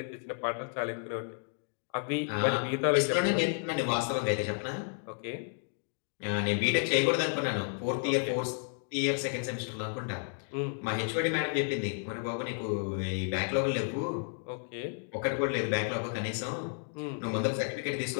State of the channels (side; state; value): right; silent; 56 dB below the other